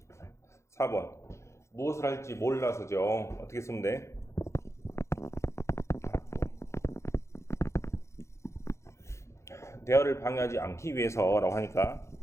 4번 무엇을 할지 몰라서죠. 어떻게 쓰면 돼? 대화를 방해하지 않기 위해서라고 하니까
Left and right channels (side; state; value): right; late; 0.14 ms